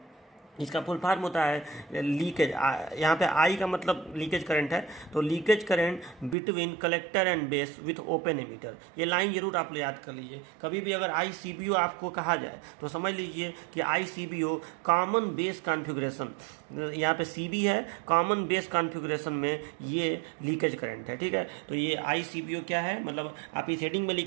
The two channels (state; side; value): drops out; left; at 6.4 s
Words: इसका फुल फॉर्म होता है लीकेज, यहाँ पे आई का मतलब लीकेज करंट है, तो leakage current between collector and base with open emitter. ये लाइन जरूर आप लोग याद कर लीजिए। कभी भी अगर ICBO आपको कहा जाए तो समझ लीजिए कि ICBO कॉमन बेस कॉन्फ़िगरेशन, यहाँ पे CB है, कॉमन बेस कॉन्फ़िगरेशन में ये लीकेज करंट है। ठीक है, तो ये ICBO क्या है, मतलब आप इस हेडिंग में